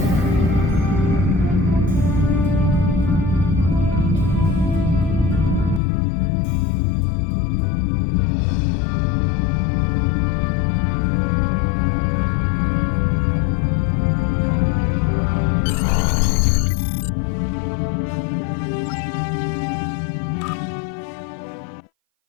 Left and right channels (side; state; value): right; drops out; at 5.8 s